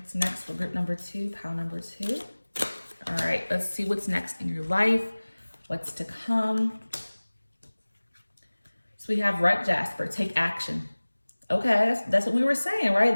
next for group number 2, pile number 2? All right, let's see what's next in your life, what's to come. So we have Red Jasper, take action. Okay, that's what we were saying,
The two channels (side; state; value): both; inverted; correlation -1.00